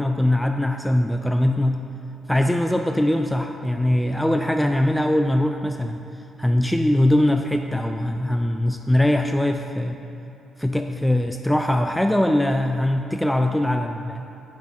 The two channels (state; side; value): normal; both; correlation 0.96